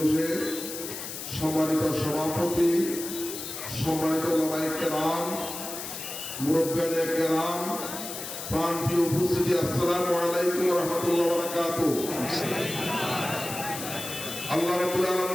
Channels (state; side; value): noise; left; hiss, 8 dB below the sound